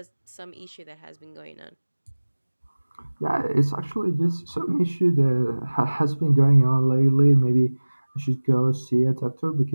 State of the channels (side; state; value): both; inverted; correlation -1.00